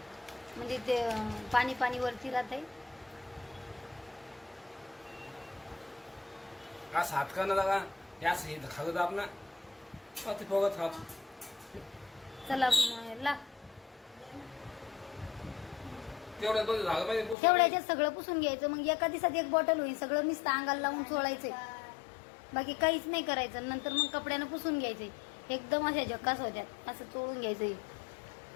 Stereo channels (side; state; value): right; drops out; at 17.4 s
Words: म्हणजे ते पाणी पाणी वरती राहतंय. आज हात का ना लगा यास हे खागत आपला पाती पोगत हात. चला ला तेवढ्यात बघ झालं पाहिजे. तेवढ्याच्यात सगळं पुसून घ्यायचं. मग एका दिवसात 1 बॉटल होईल. सगळं नुसतं अंगाला लावून चोळायचंय, बाकी काहीच नाही करायचं. नंतर मग कपड्यानं पुसून घ्यायचंय. एकदम अशा झकास होत्यात. असं चोळून घ्यायचंय.